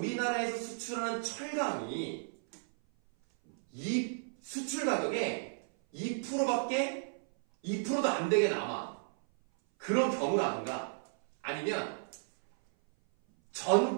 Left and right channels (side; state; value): left; silent; 55 dB below the other